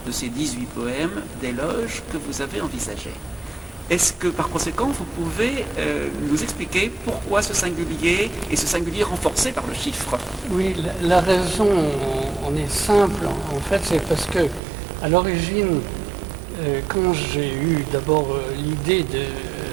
de ces 18 poèmes d'éloge que vous avez envisagés. Est-ce que, par conséquent, vous pouvez nous expliquer pourquoi ce singulier et ce singulier renforcé par le chiffre? Oui, la raison en est simple. En fait, c'est parce que, à l'origine, quand j'ai eu d'abord l'idée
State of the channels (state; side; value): drops out; left; at 14.6 s